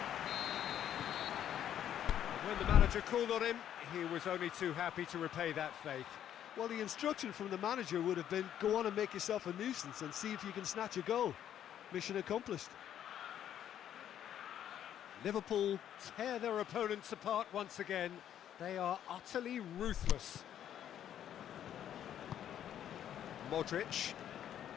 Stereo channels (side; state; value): right; quieter; 10.4 dB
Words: When the manager called on him, he was only too happy to repay that faith. Well, the instruction from the manager would have been, go on and make yourself a nuisance and see if you can snatch a goal. Mission accomplished. Liverpool tear their opponents apart once again. They are utterly ruthless. Modric.